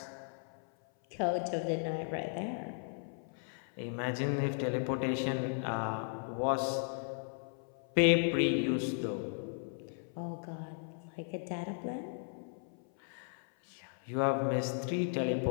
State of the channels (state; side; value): silent; right; 54 dB below the other